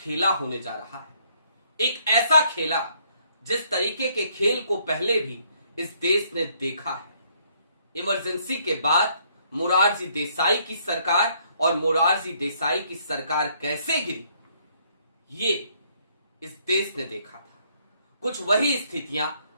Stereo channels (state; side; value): inverted; both; correlation -0.67